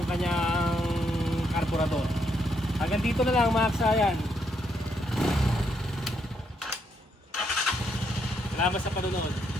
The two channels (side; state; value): both; normal; correlation 0.76